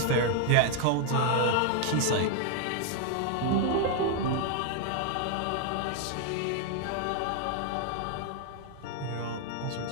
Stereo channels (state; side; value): different; both; correlation 0.00